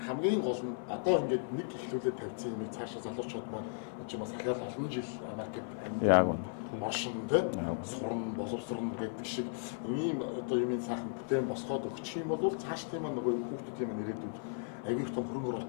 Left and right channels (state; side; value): silent; right; 54 dB below the other